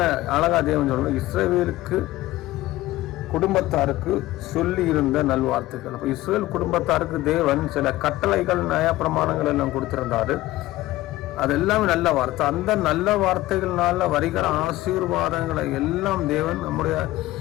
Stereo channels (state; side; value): quieter; right; 17.0 dB